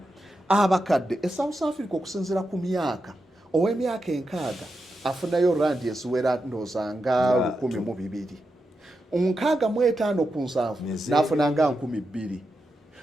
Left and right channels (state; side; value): normal; both; correlation 0.87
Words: abakadde. South Africa okusinziira ku myaka ow'emyaka 6 afunayo randi eziwera ndooza nga 1,200. 65 ku 7 n'afuna nga 2,000.